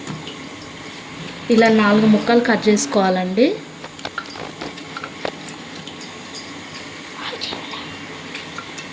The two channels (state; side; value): identical; both; correlation 1.00